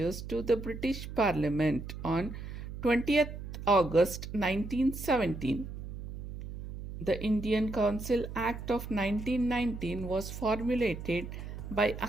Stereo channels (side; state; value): right; noise; hum, 9 dB below the sound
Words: to the British Parliament on 20th August 1917. The Indian Council Act of 1919 was formulated by